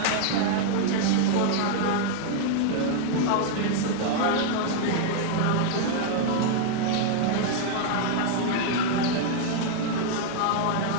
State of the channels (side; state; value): both; different; correlation 0.00